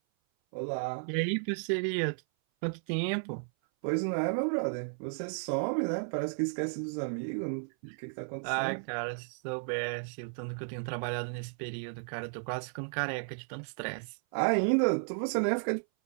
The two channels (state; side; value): silent; left; 55 dB below the other